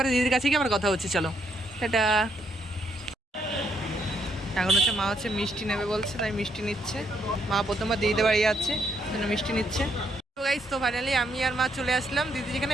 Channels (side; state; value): both; normal; correlation 0.74